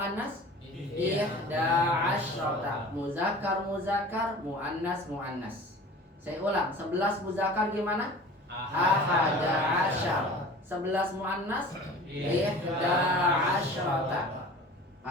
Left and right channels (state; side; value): normal; both; correlation 0.41